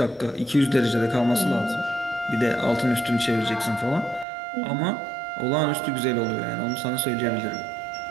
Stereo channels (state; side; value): drops out; left; at 4.2 s